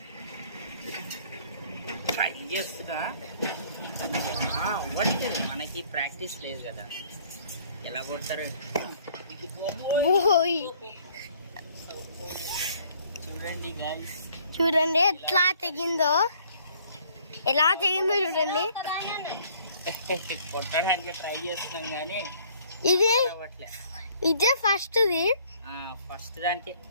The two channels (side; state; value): both; inverted; correlation -0.59